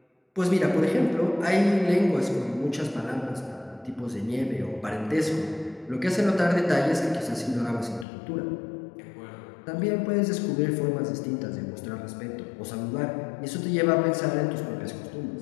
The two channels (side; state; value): right; drops out; at 8.1 s